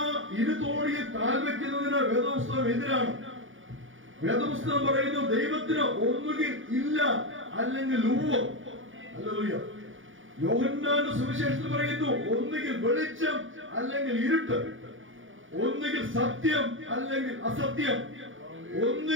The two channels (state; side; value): late; left; 0.57 ms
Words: ഇരുതോണിയിൽ കാൽ വെക്കുന്നതിന് വേദപുസ്തകം എതിരാണ്. വേദപുസ്തകം പറയുന്നു, ദൈവത്തിന് ഒന്നുകിൽ ഇല്ല, അല്ലെങ്കിൽ ഉവ്വ്. ഹല്ലേലൂയ. യോഹന്നാന്റെ സുവിശേഷത്തിൽ പറയുന്നു, ഒന്നുകിൽ വെളിച്ചം, അല്ലെങ്കിൽ ഇരുട്ട്. ഒന്നുകിൽ സത്യം, അല്ലെങ്കിൽ അസത്യം.